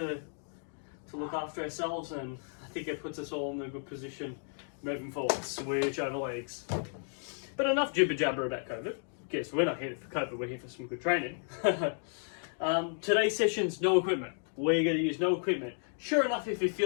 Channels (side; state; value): right; silent; 56 dB below the other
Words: look after ourselves. And I think it puts us all in a good position moving forward. Switch over legs. But enough jibber jabber about COVID. Guess we're not here for COVID, we're here for some good training. Today's session's no equipment. We're going to use no equipment. Sure enough, if you